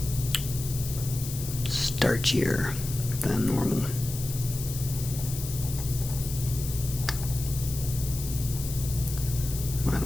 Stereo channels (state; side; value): noise; left; hiss, 9 dB below the sound